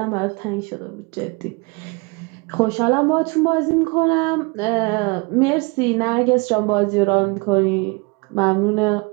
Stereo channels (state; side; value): quieter; left; 28.2 dB